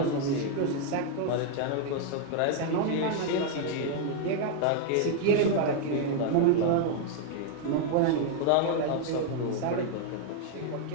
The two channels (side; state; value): both; different; correlation 0.00